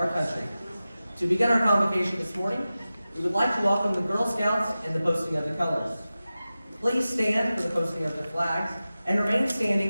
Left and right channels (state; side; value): inverted; both; correlation -0.95